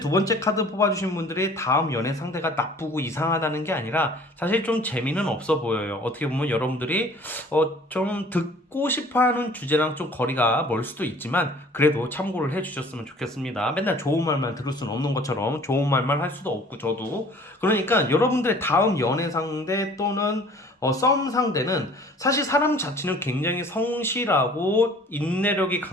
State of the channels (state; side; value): normal; both; correlation 0.50